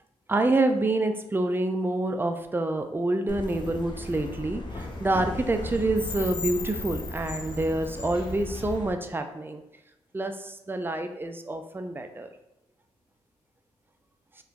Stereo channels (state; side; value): normal; both; correlation 0.82